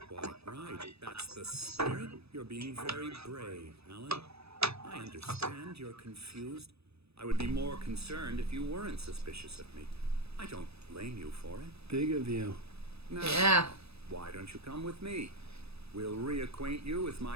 Quite right. That's the spirit. You're being very brave, Alan. I understand you're confused. I would be more concerned if you weren't suspicious of me. I don't blame you for it. Big of you. Now, Yeah. why don't you come with me? We'll reacquaint you with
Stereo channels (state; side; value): late; left; 0.79 ms